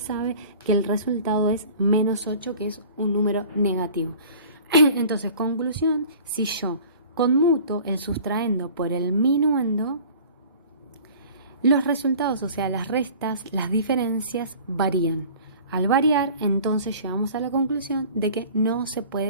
que el resultado es menos 8, que es un número negativo. Entonces, conclusión, si yo conmuto el sustraendo por el minuendo, los resultados, o sea, las restas, las diferencias varían. Al variar, entonces llegamos a la conclusión de que no se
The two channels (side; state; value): both; inverted; correlation -0.45